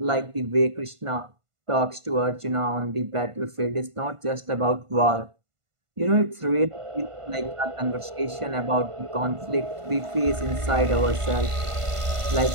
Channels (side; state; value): left; late; 1.5 ms